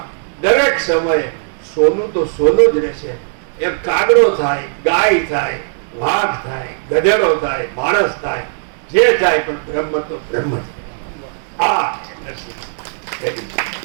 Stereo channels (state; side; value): silent; left; digital silence